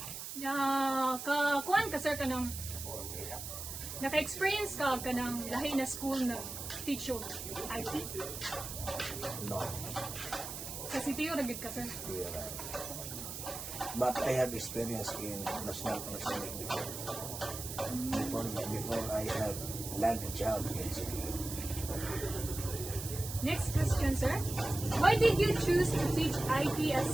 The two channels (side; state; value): right; noise; hiss, 8 dB below the sound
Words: now. Kuan ka, sir, ka ng naka-experience ka ng lahi na school na teacher IT? No, Sa CTU, nagid ka, sir? here, but I have experience in National Panasonic before I have landed a job in CTU. Next question, sir. Why did you choose to teach IT at